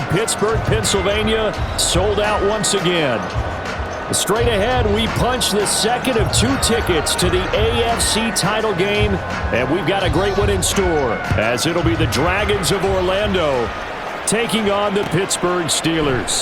Pittsburgh, Pennsylvania, sold out once again. Straight ahead, we punch the second of 2 tickets to the AFC title game, and we've got a great one in store, as it'll be the Dragons of Orlando taking on the Pittsburgh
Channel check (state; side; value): identical; both; correlation 1.00